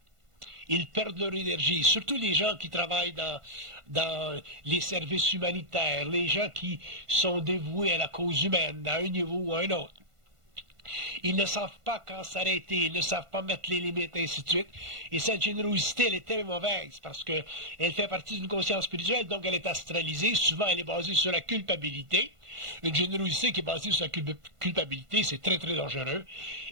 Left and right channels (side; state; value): left; late; 1.5 ms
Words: ils perdent leur énergie. Surtout les gens qui travaillent dans les services humanitaires, les gens qui sont dévoués à la cause humaine, à un niveau ou à un autre. Ils ne savent pas quand s'arrêter, ils ne savent pas mettre les limites, et ainsi de suite. Et cette générosité, elle est très mauvaise parce qu'elle fait partie d'une conscience spirituelle, donc elle est astralisée. Souvent, elle est basée sur la culpabilité. Une générosité qui est basée sur la culpabilité, c'est très, très dangereux.